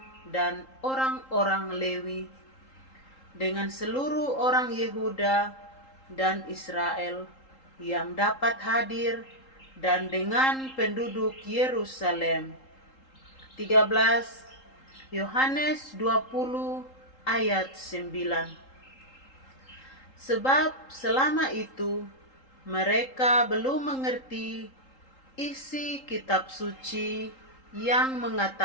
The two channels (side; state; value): right; late; 3.8 ms